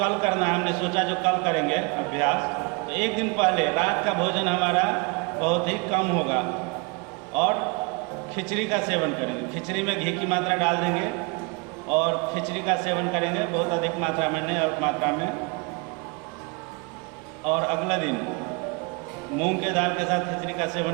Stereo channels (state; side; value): quieter; left; 30.2 dB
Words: करना है, हमने सोचा जो कल करेंगे अभ्यास, तो एक दिन पहले रात का भोजन हमारा बहुत ही कम होगा और खिचड़ी का सेवन करेंगे। खिचड़ी में घी की मात्रा डाल देंगे और खिचड़ी का सेवन करेंगे, बहुत अधिक मात्रा में नहीं, अल्प मात्रा में। और अगला दिन मूंग के दाल के साथ खिचड़ी का